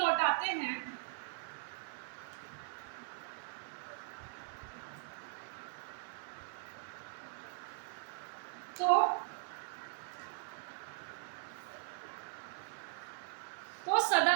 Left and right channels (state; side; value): silent; left; digital silence